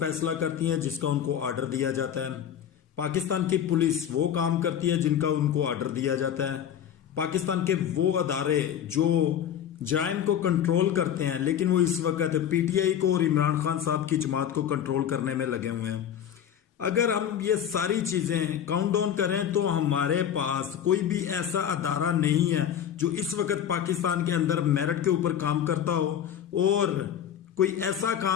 करती हैं जिसका उनको ऑर्डर दिया जाता है। पाकिस्तान की पुलिस वो काम करती है जिनका उनको ऑर्डर दिया जाता है। पाकिस्तान के वो अदारे जो जराइम को कंट्रोल करते हैं, लेकिन वो इस वक्त पीटीआई को और इमरान खान साहब की जमात को कंट्रोल करने में लगे हुए हैं। अगर हम ये सारी चीजें काउंट डाउन करें तो हमारे पास कोई भी ऐसा अदारा नहीं है जो इस वक्त पाकिस्तान के अंदर मेरिट के ऊपर काम करता हो और कोई ऐसा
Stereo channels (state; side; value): quieter; right; 9.4 dB